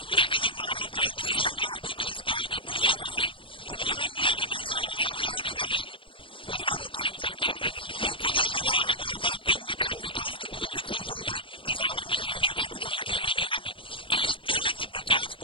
लेकिन जब मालूम पड़ा दूसरे गांव को कि इस गांव की पुलिया बन रही, तो वो लोग भी आगे नहीं साहब हमारे यहाँ भी बनेगी, तो उनने वो कैंसिल कर दी। वो खुद ही सुना रहे गौर साहब कि हमने कैंसिल कर दी, तो वो भी खुश हो गए कि साला मेरी नहीं बनी तो उनकी भी नहीं बनी। तो इस तरह से विकास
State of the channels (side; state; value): right; late; 0.25 ms